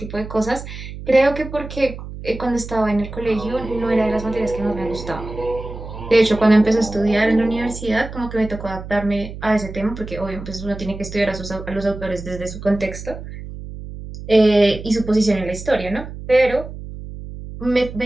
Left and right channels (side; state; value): right; noise; hum, 11 dB below the sound